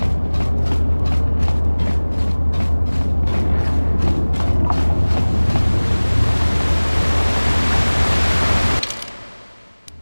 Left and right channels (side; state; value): both; inverted; correlation -1.00